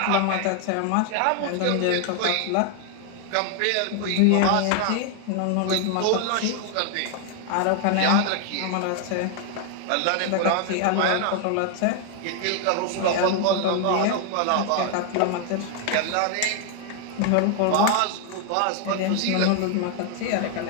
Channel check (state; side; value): different; both; correlation 0.00